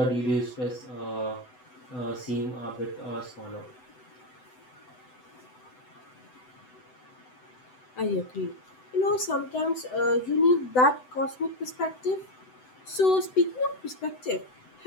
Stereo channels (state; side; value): late; right; 8.0 ms